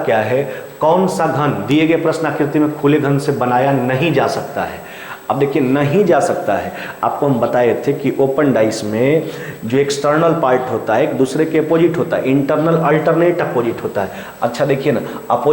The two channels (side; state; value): both; identical; correlation 1.00